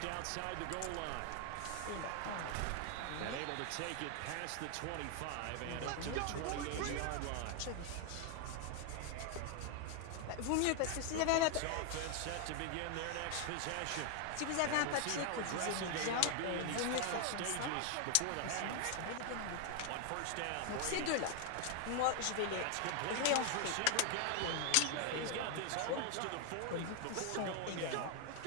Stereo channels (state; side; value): different; both; correlation 0.00